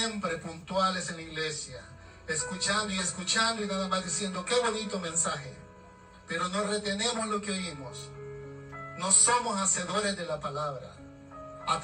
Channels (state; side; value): identical; both; correlation 1.00